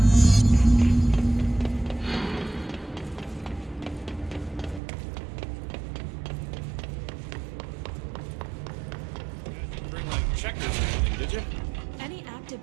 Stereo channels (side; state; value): left; drops out; at 4.8 s